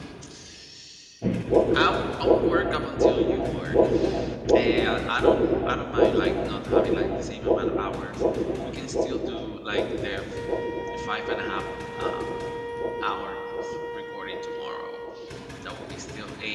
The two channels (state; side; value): identical; both; correlation 1.00